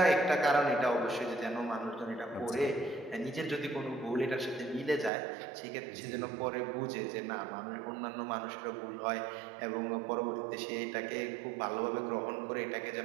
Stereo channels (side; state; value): left; drops out; at 5.1 s